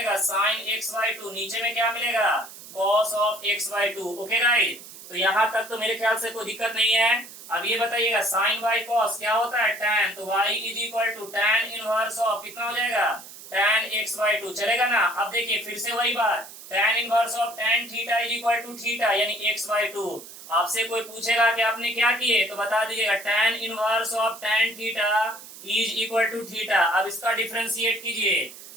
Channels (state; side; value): noise; right; hiss, 16 dB below the sound